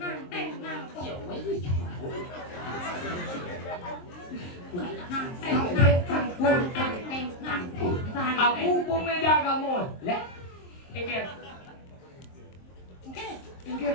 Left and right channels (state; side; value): late; right; 23 ms